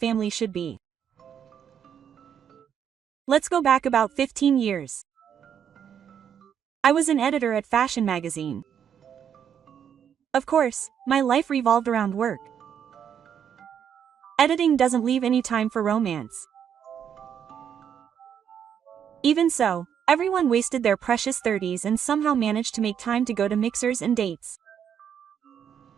should be. Let's go back about 15 years. I was an editor at fashion magazine. Of course, my life revolved around work. Editing doesn't leave any time for romance. Even so, everyone wasted their precious 30s and somehow managed to make time to go to mixers and dates.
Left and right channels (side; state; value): left; quieter; 8.5 dB